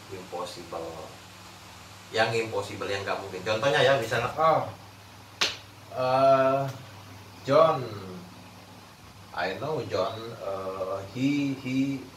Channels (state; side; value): identical; both; correlation 1.00